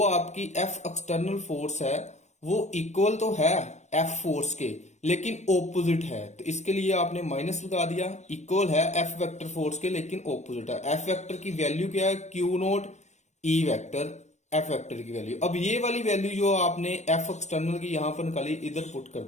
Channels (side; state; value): right; late; 0.34 ms